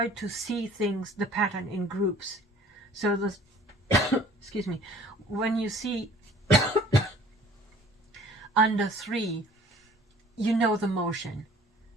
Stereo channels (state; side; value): normal; both; correlation 0.51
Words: to see things, the pattern in groups. So this, excuse me, when you see under 3, you know the motion,